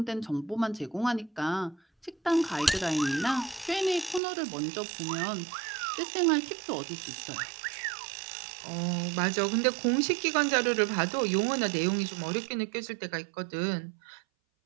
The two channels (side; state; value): left; drops out; at 4.2 s